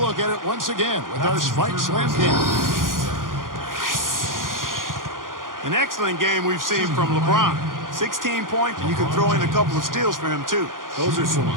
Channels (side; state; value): left; late; 0.90 ms